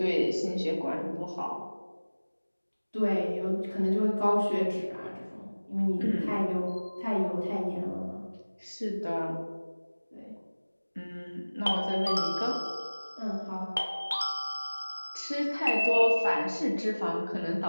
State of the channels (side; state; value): both; inverted; correlation -1.00